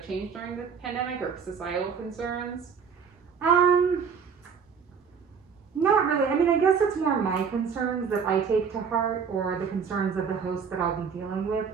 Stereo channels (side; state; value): left; quieter; 6.3 dB